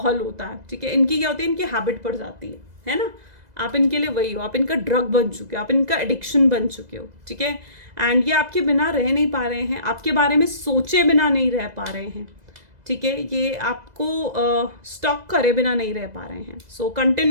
होता है, ठीक है। इनकी क्या होती है, इनकी हैबिट पड़ जाती है ना। आप इनके लिए वही हो, आप इनका ड्रग बन चुके हो, आप इनका एडिक्शन बन चुके हो, ठीक है। एंड ये आपके बिना रह नहीं पा रहे हैं, आपके बारे में सोचे बिना नहीं रह पा रहे हैं, ठीक है। ये आपको स्टॉक करे बिना नहीं रह पा रहे हैं। सो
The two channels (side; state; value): left; late; 2.0 ms